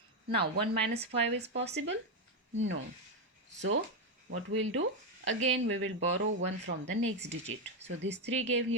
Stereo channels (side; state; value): both; normal; correlation 0.07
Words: Now 1 minus 5 is possible? No. So what we'll do? Again we will borrow 1 from the next digit. So this 3 gave